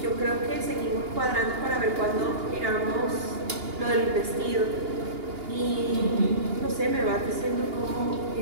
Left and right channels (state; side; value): late; left; 2.8 ms